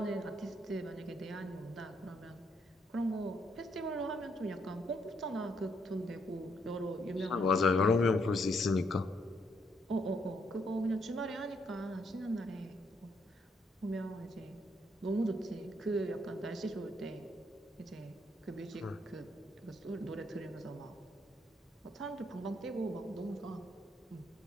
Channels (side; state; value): both; normal; correlation 0.73